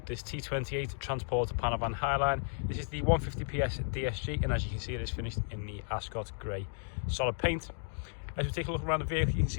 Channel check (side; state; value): right; silent; digital silence